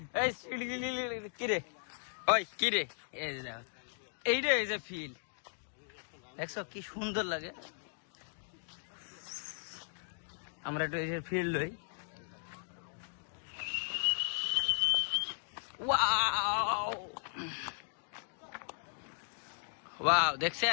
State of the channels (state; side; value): silent; right; digital silence